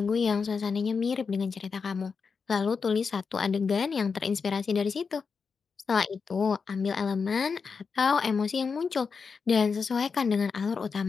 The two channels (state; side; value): quieter; right; 5.4 dB